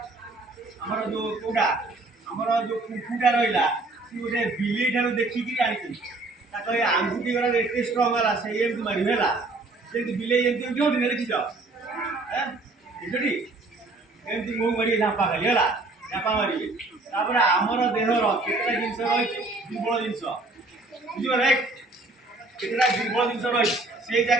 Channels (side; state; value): left; quieter; 3.2 dB